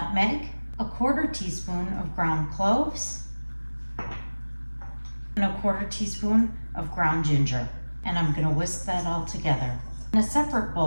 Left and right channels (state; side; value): inverted; both; correlation -1.00